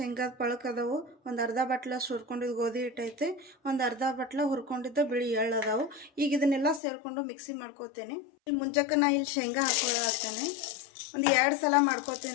ಪಳಕ್ ಅದಾವು. ಒಂದು ಅರ್ಧ ಬಟ್ಲಷ್ಟು ಹುರ್ಕೊಂಡಿದ್ದು ಗೋಧಿ ಹಿಟ್ಟೈತೆ, ಒಂದು ಅರ್ಧ ಬಟ್ಲ ಹುರ್ಕೊಂಡಿದ್ದು ಬಿಳಿ ಎಳ್ಳು ಅದಾವು. ಈಗ ಇದನ್ನೆಲ್ಲ ಸೇರಿಕೊಂಡು ಮಿಕ್ಸಿ ಮಾಡ್ಕೋತೀನಿ. ಇಲ್ಲಿ ಮುಂಚೆಕ್ಕೆ ನಾ ಇಲ್ಲಿ ಶೇಂಗಾ ಹಾಕ್ಕೊಳತ್ತೇನೆ. ಒಂದು 2 ಸಲ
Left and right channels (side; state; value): right; drops out; at 6.8 s